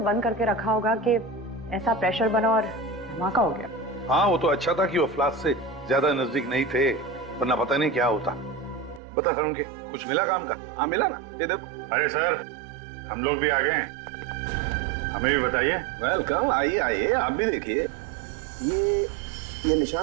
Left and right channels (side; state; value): left; drops out; at 9.0 s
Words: बंद करके रखा होगा कि ऐसा प्रेशर बना और धमाका हो गया। हाँ, वो तो अच्छा था कि वो फ्लास्क से ज्यादा नजदीक नहीं थे, वरना पता नहीं क्या होता। बता सारंगी, कुछ मिला काम का? हाँ मिला ना, ये देखो। अरे सर, हम लोग भी आ गए हैं, हमें भी बताइए। वेलकम, आइए आइए, आप भी देखिए। ये